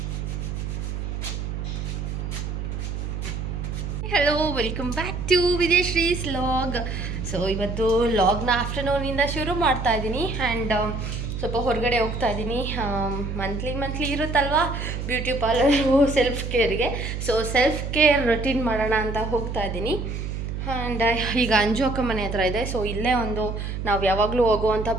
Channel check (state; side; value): noise; right; hum, 4 dB below the sound